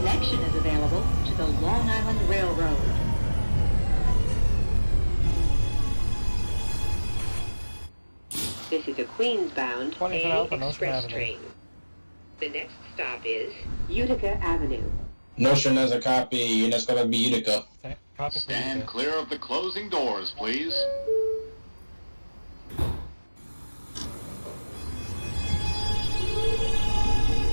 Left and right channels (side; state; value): both; inverted; correlation -1.00